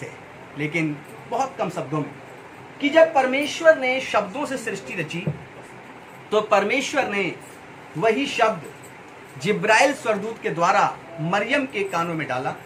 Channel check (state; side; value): identical; both; correlation 1.00